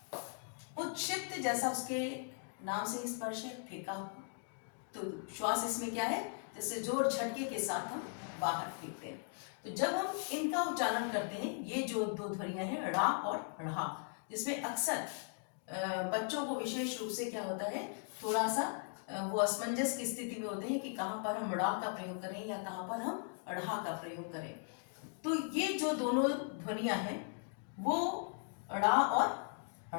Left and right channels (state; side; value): silent; right; 52 dB below the other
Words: उत्क्षिप्त जैसा उसके नाम से स्पर्श है, फेंका, तो श्वास इसमें क्या है? जैसे जोर झटके के साथ हम बाहर फेंकते हैं। तो जब हम इनका उच्चारण करते हैं, ये जो दो ध्वनियां हैं ड़ा और ढ़ा, जिसमें अक्सर बच्चों को विशेष रूप से क्या होता है, थोड़ा सा वो असमंजस की स्थिति में होते हैं कि कहाँ पर हम ड़ा का प्रयोग करें या कहाँ पर हम ढ़ा का प्रयोग करें। तो ये जो दोनों ध्वनियां हैं वो ड़ा और